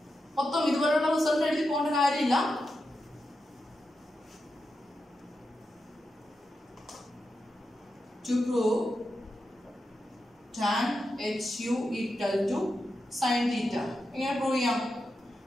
മൊത്തം ഇതുപോലുള്ള റിസൾട്ട് എഴുതി പോകേണ്ട കാര്യമില്ല. To prove tan HU equal to sin theta. എങ്ങനെ പ്രൂവ് ചെയ്യാം?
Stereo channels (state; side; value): normal; both; correlation 0.88